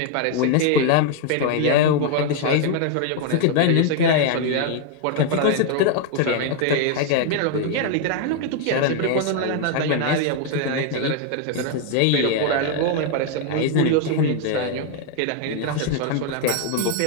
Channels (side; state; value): both; different; correlation 0.01